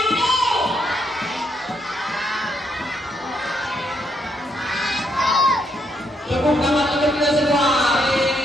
Tepuk tangan untuk kita semua.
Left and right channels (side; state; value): both; normal; correlation 0.75